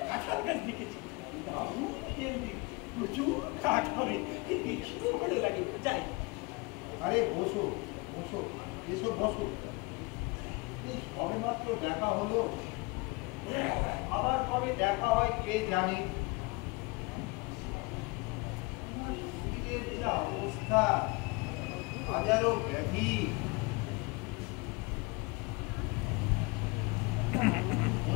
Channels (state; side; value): quieter; right; 26.4 dB